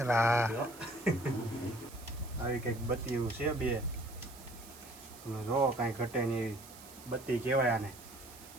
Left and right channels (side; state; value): right; noise; hiss, 18 dB below the sound